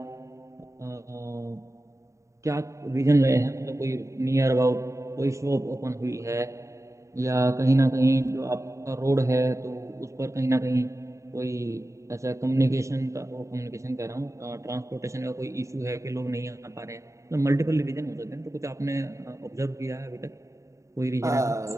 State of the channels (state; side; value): late; left; 0.15 ms